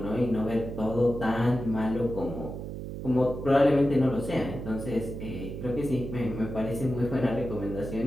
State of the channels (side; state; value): right; noise; hum, 7 dB below the sound